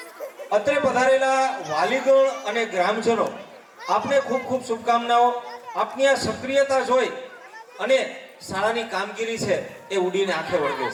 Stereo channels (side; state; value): both; identical; correlation 1.00